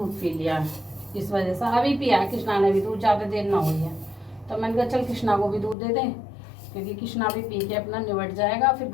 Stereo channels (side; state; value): right; drops out; at 5.8 s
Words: पी लिया, इस वजह से अभी पिया कृष्णा ने भी दूध, ज़्यादा देर ना हुई है। तो मैंने कहा चल कृष्णा को भी दूध दे दें, क्योंकि कृष्णा भी पी के अपना निबट जाएगा। फिर